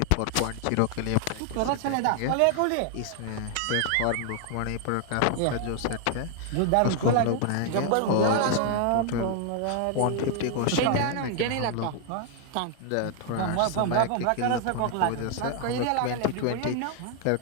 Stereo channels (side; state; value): both; different; correlation 0.00